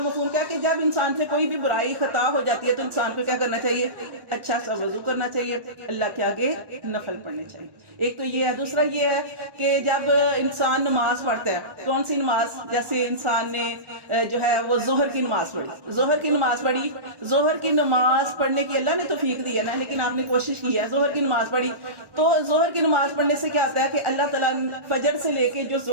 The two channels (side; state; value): left; late; 1.2 ms